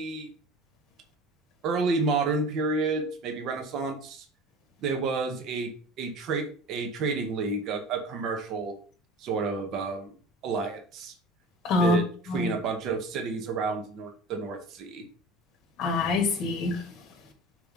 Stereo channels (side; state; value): both; normal; correlation 0.37